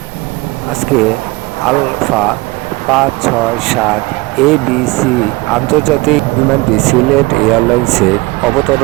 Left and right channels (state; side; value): quieter; left; 23.0 dB